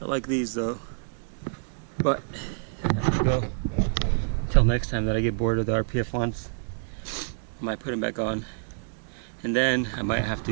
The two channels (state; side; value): silent; left; digital silence